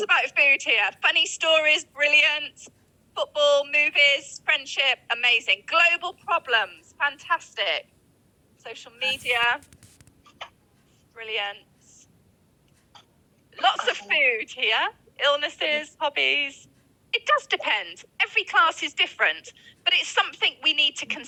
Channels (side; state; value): both; identical; correlation 1.00